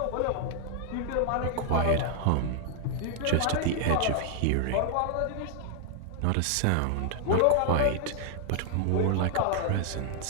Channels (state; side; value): different; both; correlation 0.00